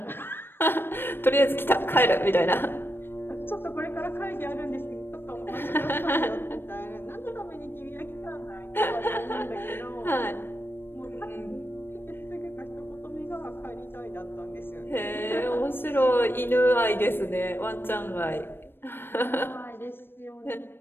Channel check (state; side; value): late; right; 0.10 ms